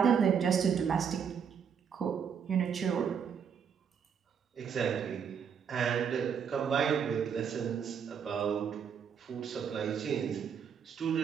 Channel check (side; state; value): left; quieter; 7.2 dB